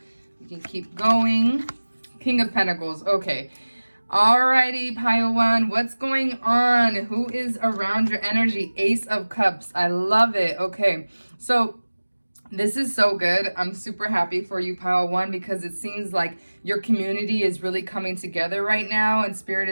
We can keep going. King of Pentacles. Okay. Alrighty, pile one. What's going on? Who is around your energy? Ace of Cups. I love it. Okay. So this is so good. I'm super happy for you, pile one, because it seems like your community is really coming together right now, and Spirit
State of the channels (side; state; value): both; inverted; correlation -1.00